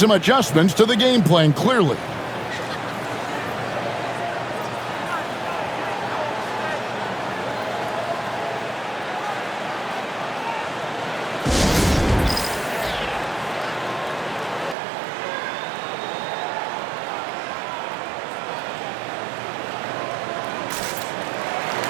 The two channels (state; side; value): drops out; left; at 14.8 s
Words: adjustments to the game plan, clearly.